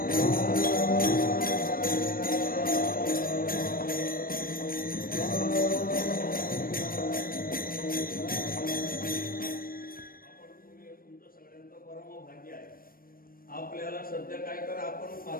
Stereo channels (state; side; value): late; right; 0.42 ms